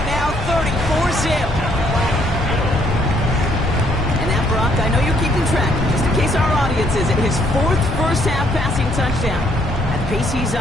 now, 34-zip. And that, Brock, I know you're keeping track. Just in case our audience isn't, his 4th first-half passing touchdown. At the pace he's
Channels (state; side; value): normal; both; correlation 0.68